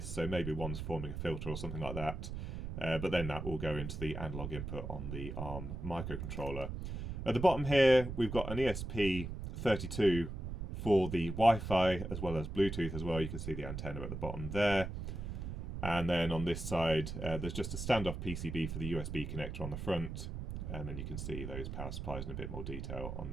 so maybe one's forming a filter or something like that. But then that will go into the analog input on the ARM microcontroller. At the bottom here, we've got an ESP32 for the Wi-Fi as well as Bluetooth as well. You can see the antenna at the bottom there. And then on this side, there's just a standoff PCB for the USB connector on the front. And then you can see those power supplies in a bit more detail on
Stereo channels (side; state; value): right; noise; rumble, 6 dB below the sound